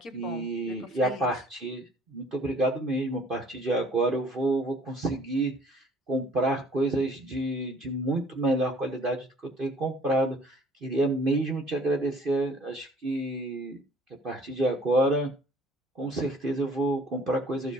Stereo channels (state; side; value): normal; both; correlation 0.54